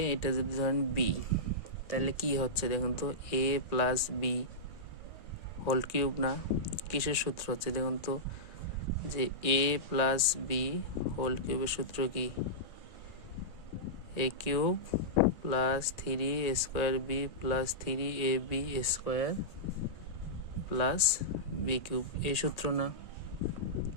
এটা যদি ধরেন বি, তাহলে কি হচ্ছে দেখুন তো, a plus b whole cube না? কিসের সূত্র হচ্ছে দেখুন তো, যে এ প্লাস বি হোল কিউবের সূত্র কি? A cube plus 3 square b plus 3ab square plus b cube, এই সূত্র না?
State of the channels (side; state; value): right; late; 1.9 ms